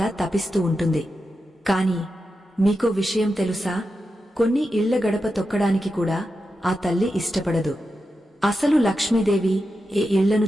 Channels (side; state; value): both; normal; correlation 0.89